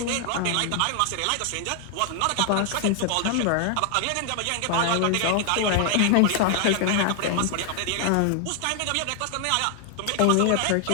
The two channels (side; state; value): both; different; correlation 0.00